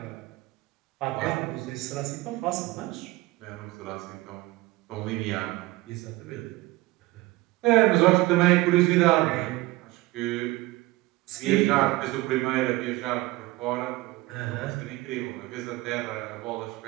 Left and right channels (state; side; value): quieter; left; 19.6 dB